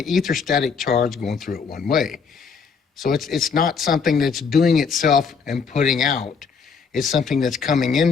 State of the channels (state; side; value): quieter; right; 5.7 dB